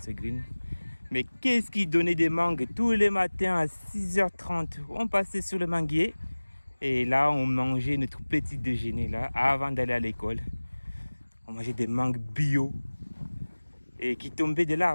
ce green. Mais qu'est-ce qui donnait des mangues tous les matins à 6h30? On passait sur le manguier et là on mangeait notre petit déjeuner là avant d'aller à l'école. On mangeait des mangues bio et qui tombaient de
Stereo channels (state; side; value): inverted; both; correlation -1.00